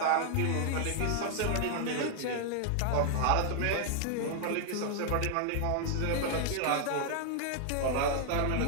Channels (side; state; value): both; different; correlation 0.00